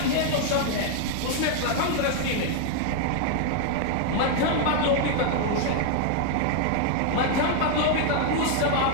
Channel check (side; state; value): both; different; correlation 0.00